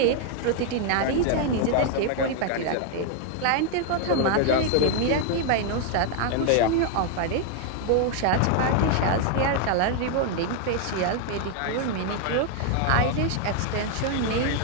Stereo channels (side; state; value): both; different; correlation 0.00